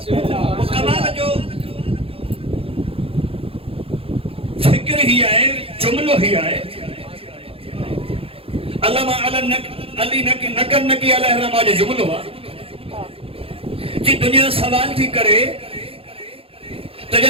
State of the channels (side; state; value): left; late; 0.27 ms